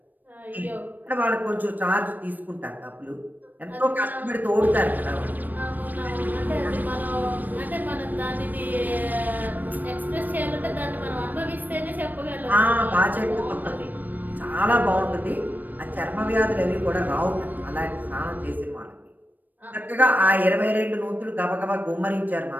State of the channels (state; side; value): late; left; 0.087 ms